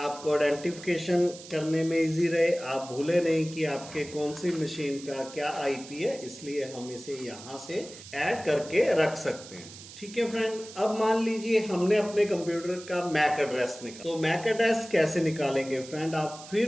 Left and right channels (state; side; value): noise; right; hiss, 16 dB below the sound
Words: आइडेंटिफिकेशन करने में इजी रहे, आप भूले नहीं कि आपके कौन सी मशीन का क्या IP है, इसलिए हम इसे यहाँ से ऐड करके रख सकते हैं। ठीक है फ्रेंड, अब मान लीजिए हमने अपने कंप्यूटर का मैक एड्रेस निकाला। तो मैक एड्रेस कैसे निकालेंगे फ्रेंड, आप